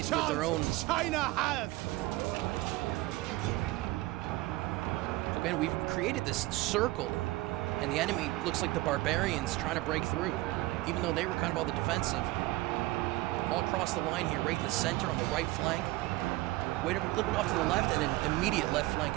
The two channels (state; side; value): quieter; left; 19.4 dB